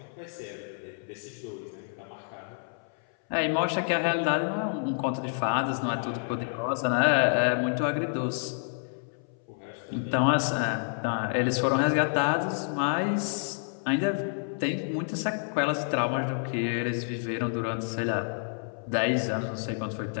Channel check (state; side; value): silent; right; 59 dB below the other